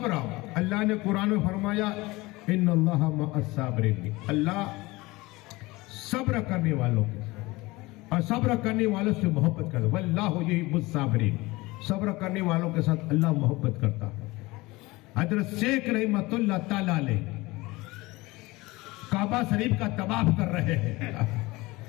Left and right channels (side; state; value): right; quieter; 21.5 dB